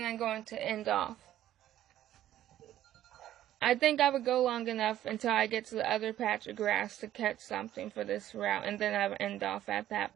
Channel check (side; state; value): left; quieter; 12.6 dB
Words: I'm going to end off. I think I would go long enough until I get to the other patch of grass to catch something for this route, and then I would end off at